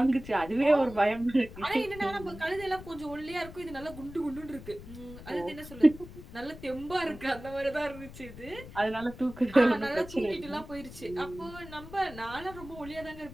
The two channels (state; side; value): noise; left; rumble, 15 dB below the sound